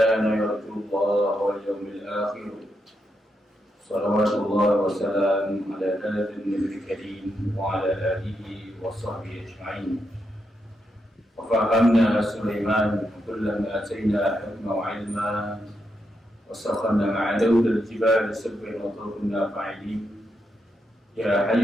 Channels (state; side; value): normal; both; correlation 0.83